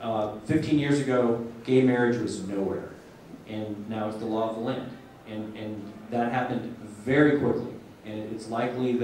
years ago, gay marriage was nowhere. And now it's the law of the land. And that happened very quickly. And it's likely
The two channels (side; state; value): both; identical; correlation 1.00